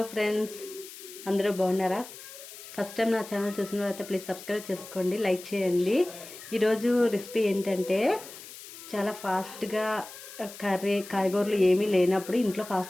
friends, అందరూ బాగున్నారా? First time నా ఛానల్ చూసిన తర్వాత ప్లీజ్ సబ్స్క్రైబ్ చేసుకోండి, లైక్ చేయండి. ఈరోజు రెసిపీ ఏంటంటే చాలా ఫాస్ట్గా కర్రీ కాయగూరలు ఏమీ లేనప్పుడు ఇంట్లో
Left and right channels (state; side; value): noise; left; hiss, 15 dB below the sound